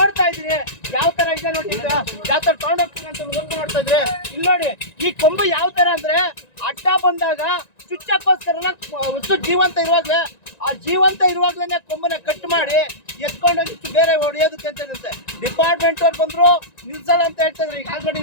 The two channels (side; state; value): right; late; 1.9 ms